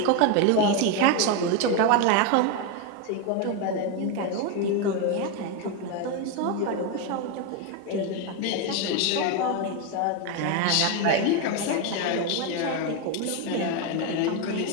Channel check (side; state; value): both; different; correlation 0.02